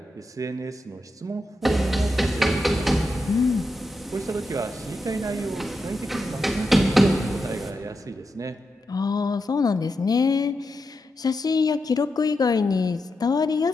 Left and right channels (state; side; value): normal; both; correlation 0.87